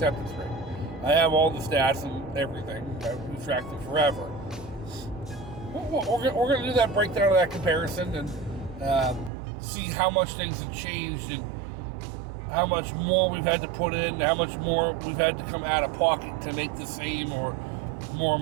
rate. I have all the stats and everything. We've tracked them forever. We're going to do that breakdown of that comparison and see how much things have changed and how much more we've had to put in, how much more we've had to come out of pocket to make the same or more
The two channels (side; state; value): left; drops out; at 9.3 s